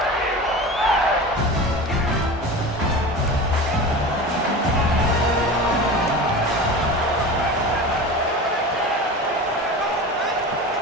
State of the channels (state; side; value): normal; both; correlation 0.31